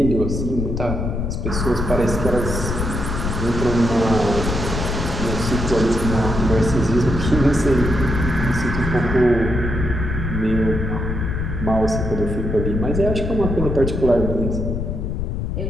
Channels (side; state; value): left; noise; rumble, 2 dB below the sound